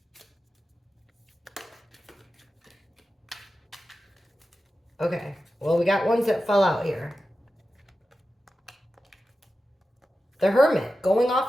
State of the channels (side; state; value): both; normal; correlation 0.92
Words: Okay. Well, we got ones that fell out here. The Hermit, going